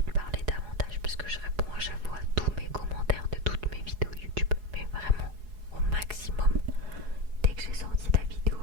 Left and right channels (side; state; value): left; late; 4.8 ms